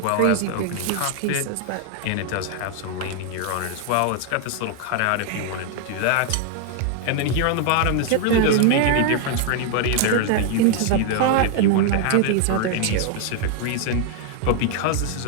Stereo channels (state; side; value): different; both; correlation 0.00